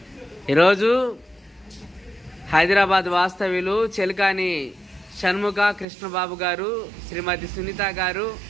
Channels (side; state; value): left; drops out; at 5.9 s